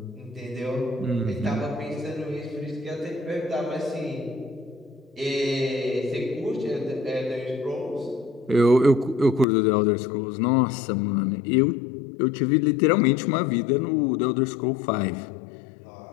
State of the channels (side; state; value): right; drops out; at 9.5 s